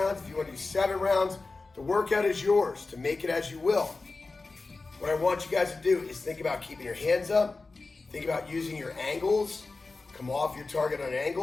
if you wanna do 7 rounds, the workout is yours to make it as you will. What I want you guys to do is think about keeping your hands up, think about using your angles, come off your target on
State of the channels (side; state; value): right; quieter; 3.7 dB